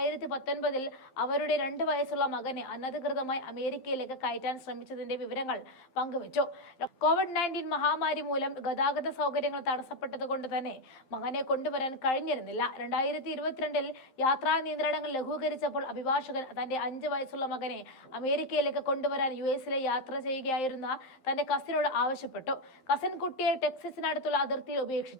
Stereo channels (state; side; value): late; right; 11 ms